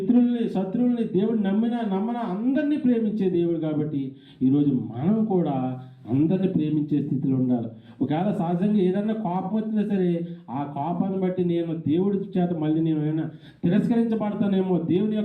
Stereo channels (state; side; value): identical; both; correlation 1.00